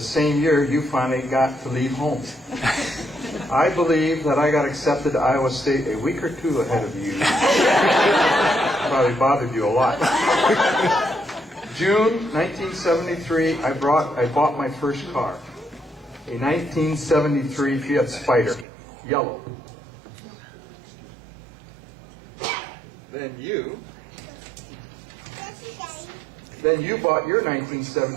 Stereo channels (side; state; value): left; drops out; at 18.7 s